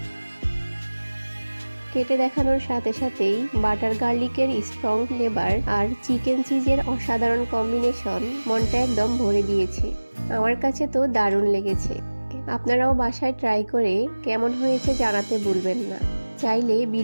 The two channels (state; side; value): inverted; both; correlation -1.00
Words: কেটে দেখানোর সাথে সাথেই বাটার গার্লিকের স্ট্রং ফ্লেভার আর চিকেন চিজের অসাধারণ কম্বিনেশন মনটা একদম ভরে দিয়েছে। আমার কাছে তো দারুণ লেগেছে। আপনারাও বাসায় ট্রাই করে কেমন হয়েছে জানাতে ভুলবেন না। চাইলে